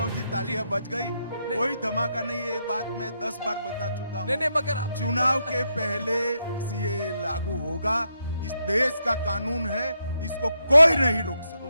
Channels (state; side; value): inverted; both; correlation -0.81